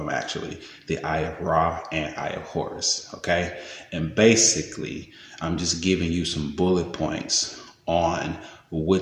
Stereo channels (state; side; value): identical; both; correlation 1.00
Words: actually, the Eye of Ra and Eye of Horus. Okay, and basically, I'm just giving you some bullet points on